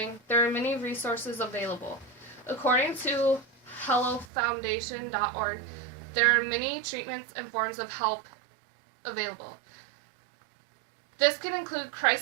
there are many resources available. According to HelloFoundation.org, there are many treatments and forms of help available. This can include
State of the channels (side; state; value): left; drops out; at 4.3 s